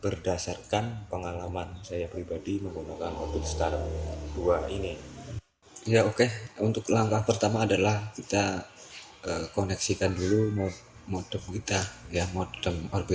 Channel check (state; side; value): identical; both; correlation 1.00